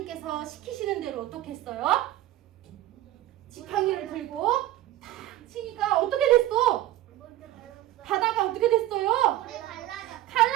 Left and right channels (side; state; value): left; quieter; 14.6 dB